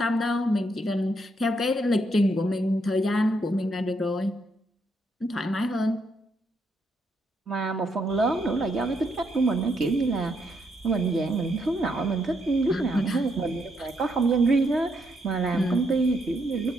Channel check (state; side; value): normal; both; correlation 0.76